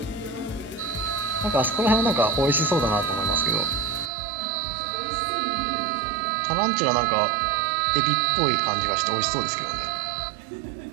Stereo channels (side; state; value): left; drops out; at 4.1 s